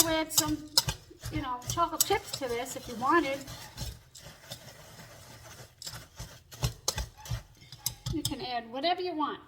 add some, chocolate chips to this if you wanted. You can add whatever you want.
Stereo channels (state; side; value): identical; both; correlation 1.00